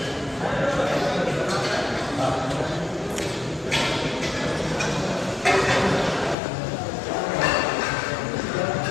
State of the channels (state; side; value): drops out; right; at 6.4 s